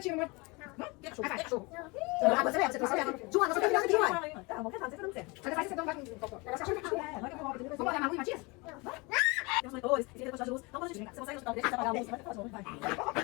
Que cachorro? Que cachorro? Você trouxe. Joana, você tá virando aqui, uai. Tá, vamos tentar, você tá dando certo. Você vai com vai com vamos olhar na rua, Matias? Tem uns monitores, tem que de luz. Então, quando a gente você consegue ajudar, deixa eu apagar a luz, vai falar vai.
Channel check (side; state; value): right; quieter; 26.7 dB